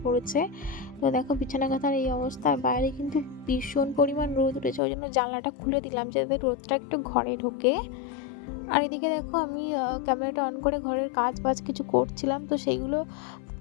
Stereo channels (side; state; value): right; drops out; at 4.8 s